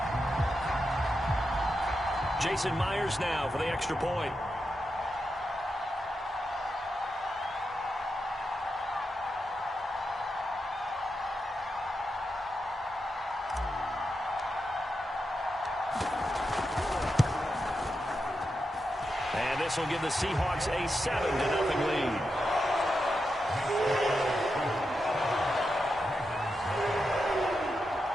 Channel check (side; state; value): both; normal; correlation 0.87